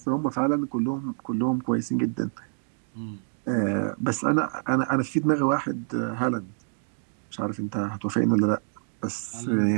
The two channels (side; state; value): left; silent; digital silence